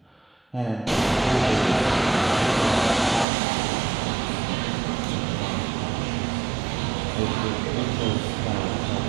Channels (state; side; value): drops out; left; at 3.2 s